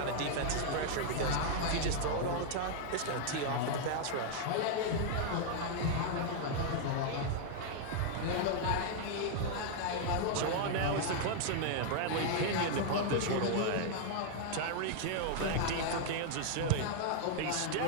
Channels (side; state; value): both; different; correlation 0.00